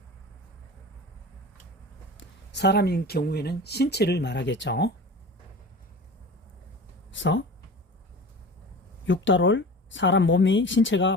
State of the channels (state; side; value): normal; both; correlation 0.36